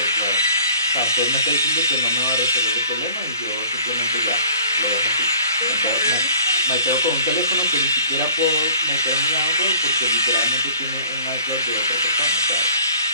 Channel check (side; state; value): both; inverted; correlation -0.52